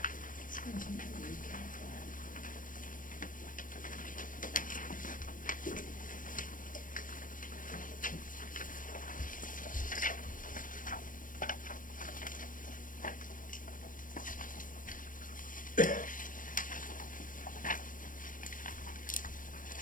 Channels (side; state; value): right; late; 0.39 ms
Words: This one's in the recap file.